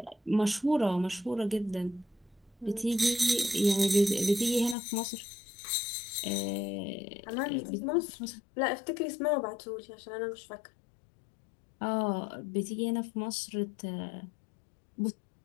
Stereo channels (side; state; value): right; drops out; at 4.8 s